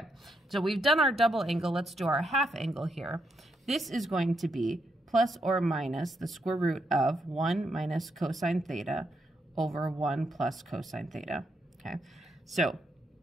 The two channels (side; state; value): both; normal; correlation 0.80